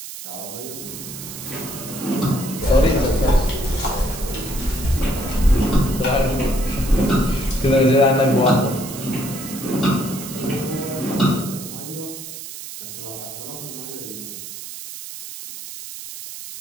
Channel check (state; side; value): noise; right; hiss, 11 dB below the sound